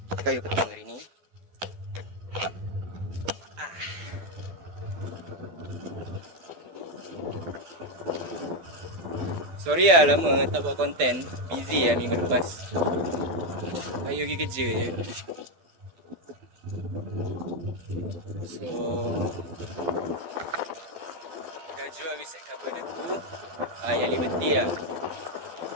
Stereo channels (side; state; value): left; late; 12 ms